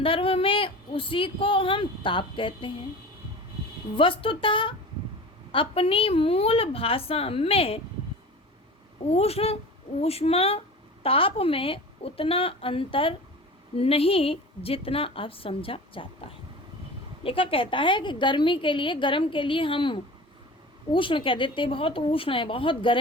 में उसी को हम ताप कहते हैं। वस्तुतः अपनी मूल भाषा में उष्ण ऊष्मा ताप में उतना अंतर नहीं जितना अब समझा जाता है। लेखक कहता है कि गर्मी के लिए गर्म के लिए हम उष्ण कह देते हैं, बहुत उष्ण है, बहुत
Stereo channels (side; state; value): both; normal; correlation 0.36